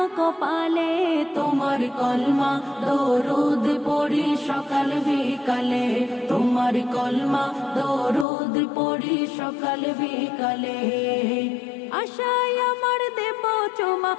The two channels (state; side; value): drops out; right; at 8.2 s